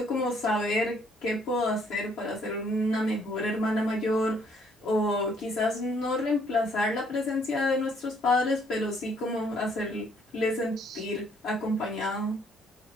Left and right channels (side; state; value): both; normal; correlation 0.65